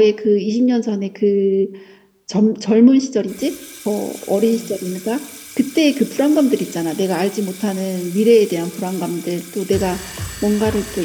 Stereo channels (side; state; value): both; identical; correlation 1.00